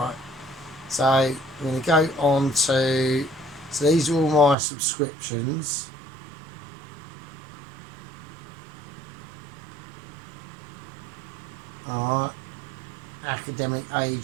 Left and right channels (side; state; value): left; drops out; at 4.5 s